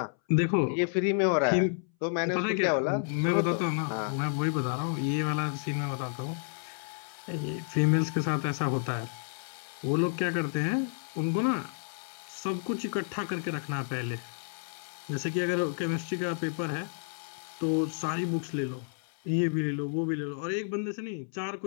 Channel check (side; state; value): right; silent; 57 dB below the other